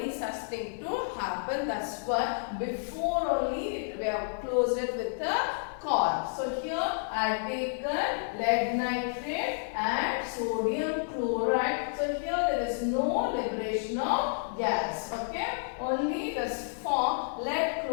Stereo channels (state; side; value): silent; right; 58 dB below the other